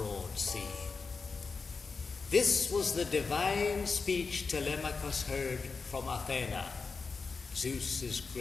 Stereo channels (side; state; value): right; quieter; 4.7 dB